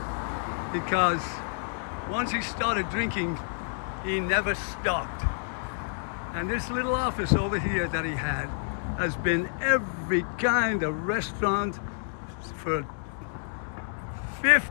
Because once he started drinking, he never stopped. And this little office over here that he had has been every kind of restaurant for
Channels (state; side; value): silent; right; 59 dB below the other